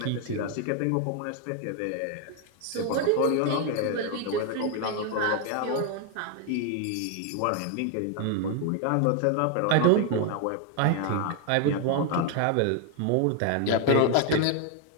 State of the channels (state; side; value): different; both; correlation 0.01